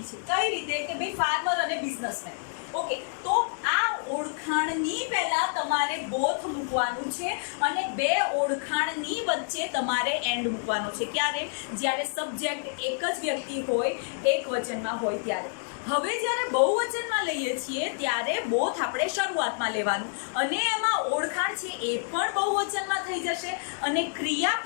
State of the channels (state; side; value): silent; right; digital silence